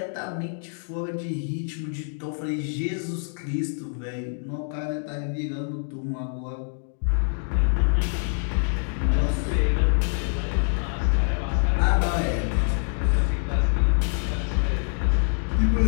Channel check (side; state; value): right; silent; 61 dB below the other